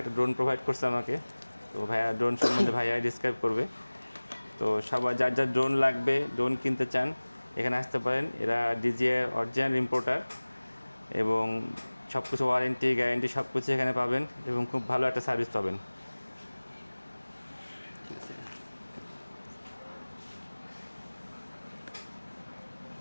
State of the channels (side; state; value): both; inverted; correlation -1.00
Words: একটা ড্রোন প্রোভাইড করছে আমাকে। তো ভাইয়া ড্রোন সম্বন্ধে ভাইয়া ডিসক্রাইব করবে। তো সবার যার যার ড্রোন লাগবে, ড্রোন কিনতে চান, এখানে আসতে পারেন। এরা DJI অরিজিনাল ইম্পোর্টার এবং সব কিছু ওয়ারেন্টি গ্যারেন্টি সব কিছু এখানে পাবেন এবং খুব ভালো একটা সার্ভিস পাবেন।